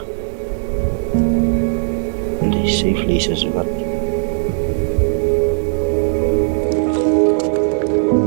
En die zeevlees is wat.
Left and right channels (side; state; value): left; silent; digital silence